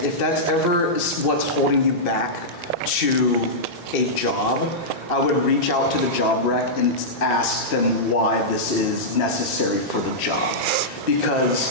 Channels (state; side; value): normal; both; correlation -0.11